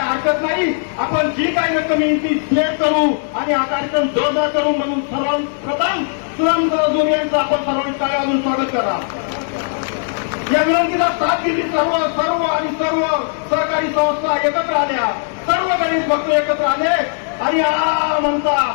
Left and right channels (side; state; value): right; silent; 67 dB below the other